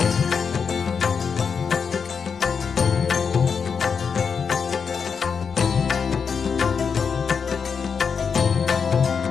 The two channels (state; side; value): quieter; right; 6.1 dB